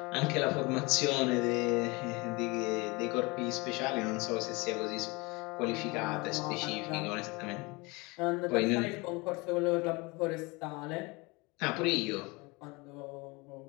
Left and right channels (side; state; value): right; quieter; 25.8 dB